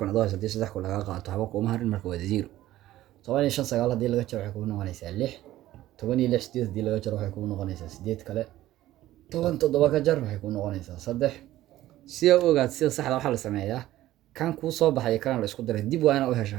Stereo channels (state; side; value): quieter; left; 14.8 dB